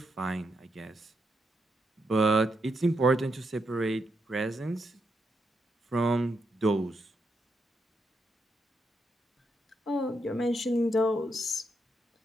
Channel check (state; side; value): normal; both; correlation 0.81